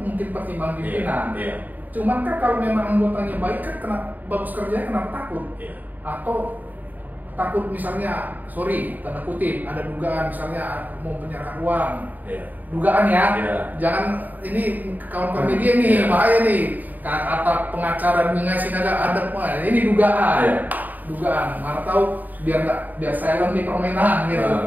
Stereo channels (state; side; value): late; left; 0.083 ms